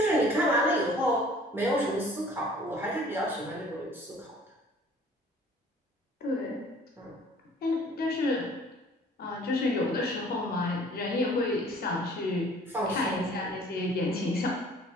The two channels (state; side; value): normal; both; correlation 0.52